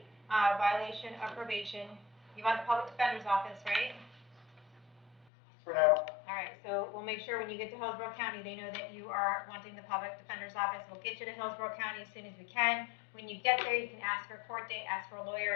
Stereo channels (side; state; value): right; drops out; at 5.2 s